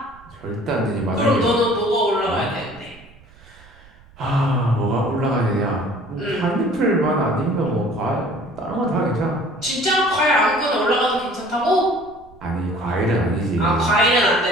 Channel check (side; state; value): right; noise; rumble, 25 dB below the sound